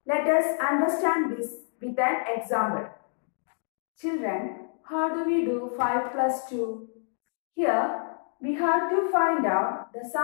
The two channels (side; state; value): right; silent; 58 dB below the other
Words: Let us understand this with an example. Children, how do we do 5 plus 2? Here, we have to find out the